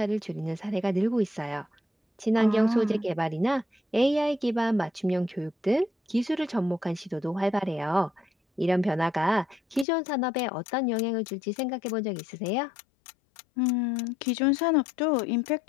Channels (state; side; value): drops out; right; at 9.9 s